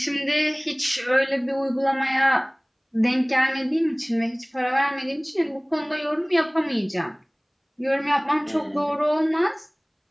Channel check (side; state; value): both; identical; correlation 1.00